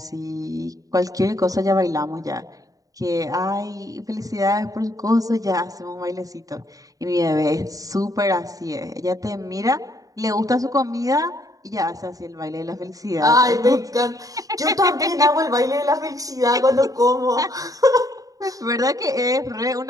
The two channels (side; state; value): left; late; 0.17 ms